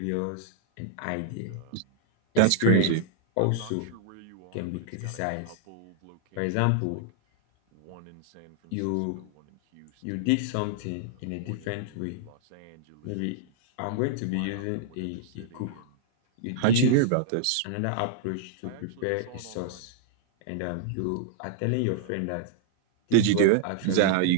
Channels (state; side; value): different; both; correlation -0.01